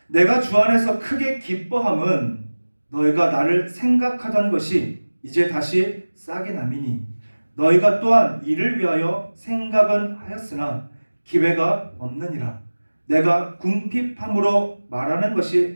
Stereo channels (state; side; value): inverted; both; correlation -1.00